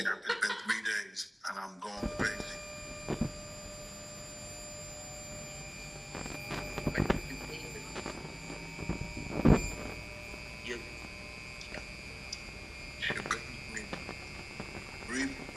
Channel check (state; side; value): identical; both; correlation 1.00